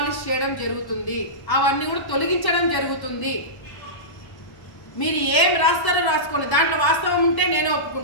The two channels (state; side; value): late; right; 1.1 ms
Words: చేయడం జరుగుతుంది, అవన్నీ కూడా తొలగించడం జరుగుతుంది. మీరు ఏం రాస్తారో రాసుకోండి, దాంట్లో వాస్తవం ఉంటే నేను